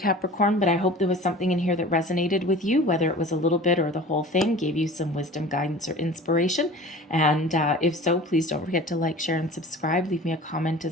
but I hope there was something in here that resonated with you, whether it was a little bit or the whole thing, gave you some wisdom, guidance, or inspiration. And if so, please don't forget to like, share, and subscribe. Leave me a comment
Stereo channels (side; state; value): both; normal; correlation 0.41